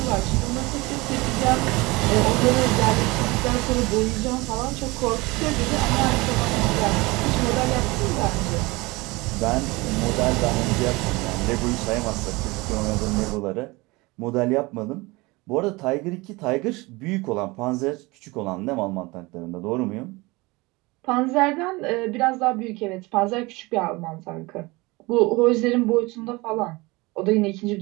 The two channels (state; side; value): quieter; left; 23.4 dB